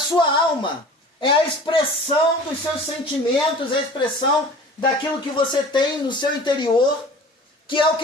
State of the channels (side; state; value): both; normal; correlation 0.43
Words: alma é a expressão dos seus sentimentos, é a expressão daquilo que você tem no seu interior, que é o